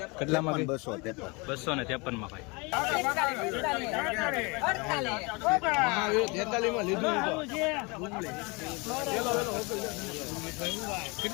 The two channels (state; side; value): quieter; right; 28.3 dB